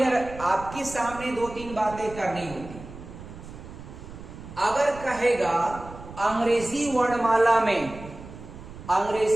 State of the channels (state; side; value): noise; right; rumble, 14 dB below the sound